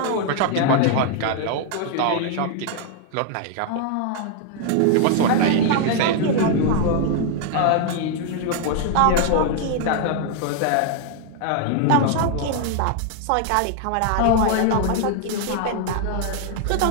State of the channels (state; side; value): different; both; correlation 0.00